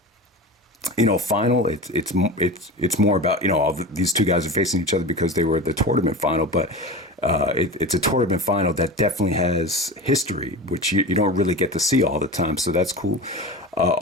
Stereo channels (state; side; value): normal; both; correlation 0.29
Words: it's more about these two guys are facing each other because they were at the tournament final, but it's a tournament final that definitely has history, which you don't really get to see all the time, so that's cool.